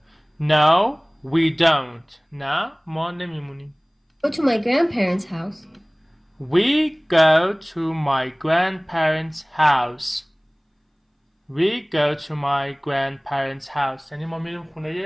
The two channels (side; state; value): both; identical; correlation 1.00